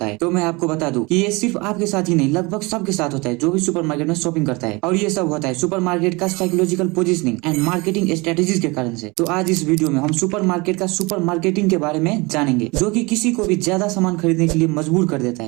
है। तो मैं आपको बता दूं कि ये सिर्फ आपके साथ ही नहीं, लगभग सबके साथ होता है जो भी सुपरमार्केट में शॉपिंग करता है। और ये सब होता है सुपरमार्केट का psychological positioning and marketing strategies के कारण से। तो आज इस वीडियो में हम सुपरमार्केट का सुपर मार्केटिंग के बारे में जानेंगे, जो कि किसी को भी ज्यादा सामान खरीदने के लिए मजबूर कर देता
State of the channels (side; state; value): left; quieter; 25.5 dB